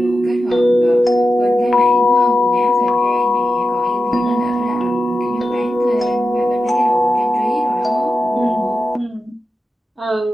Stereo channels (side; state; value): both; normal; correlation 0.91